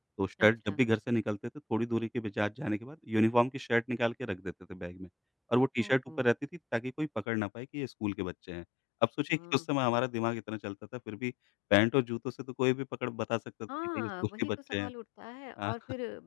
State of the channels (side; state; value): right; drops out; at 7.2 s